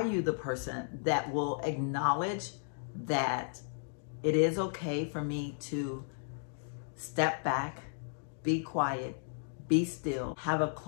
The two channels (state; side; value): silent; right; digital silence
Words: you the person that will acknowledge that it is okay for me to step back, be quiet, be still, have a